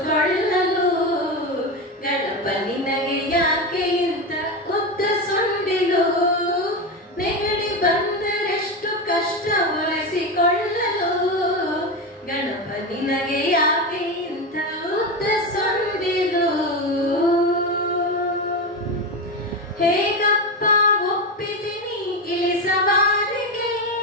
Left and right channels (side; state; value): both; normal; correlation 0.16